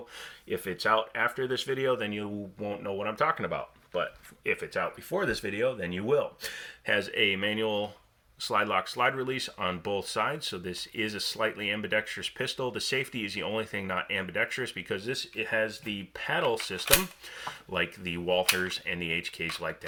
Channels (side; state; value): both; identical; correlation 1.00